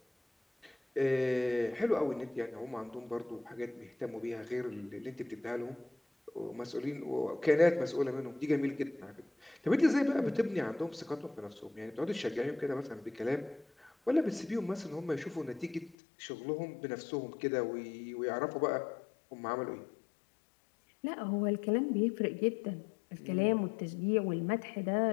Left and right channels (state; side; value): drops out; right; at 16.0 s